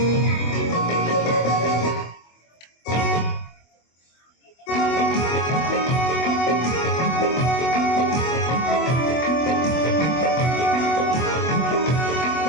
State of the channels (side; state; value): right; late; 24 ms